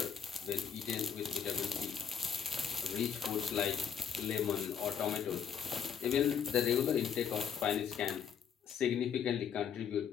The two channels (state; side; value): quieter; right; 7.8 dB